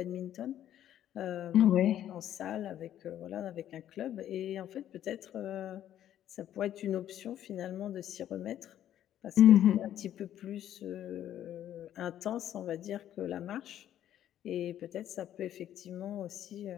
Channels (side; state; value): right; quieter; 11.3 dB